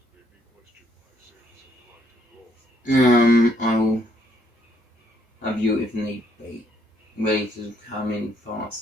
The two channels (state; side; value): normal; both; correlation 0.70